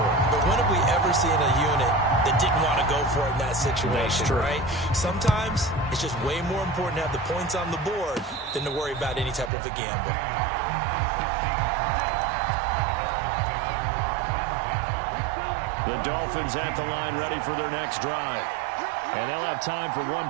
it. But when have we ever seen a unit that didn't want to go for it in that situation, right? Sometimes it's just way more important to have the points on the board than to worry about any type of a gamble. The Dolphins at the line ready for their next drive. And they'll have time for 1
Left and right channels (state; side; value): drops out; left; at 9.5 s